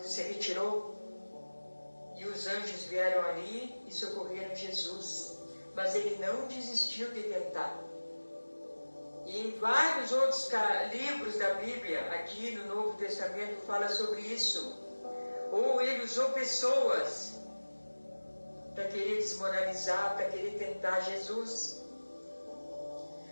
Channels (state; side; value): inverted; both; correlation -1.00